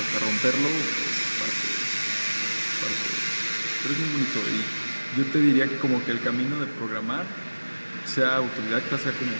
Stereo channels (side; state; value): both; inverted; correlation -1.00